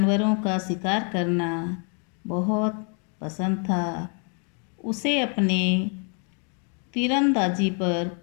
का शिकार करना बहुत पसंद था। उसे अपने तीरंदाजी पर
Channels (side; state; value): right; quieter; 39.3 dB